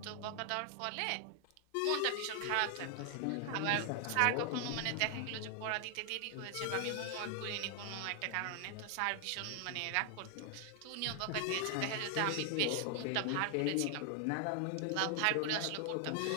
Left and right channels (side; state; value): both; different; correlation 0.00